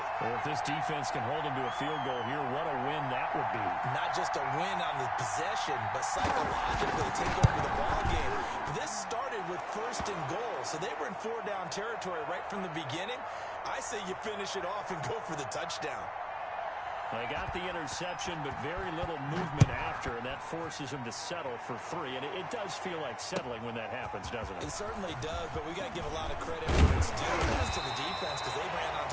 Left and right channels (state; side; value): identical; both; correlation 1.00